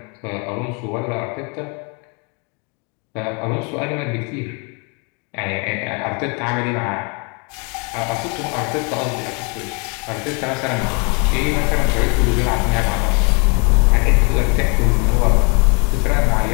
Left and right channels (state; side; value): quieter; right; 33.4 dB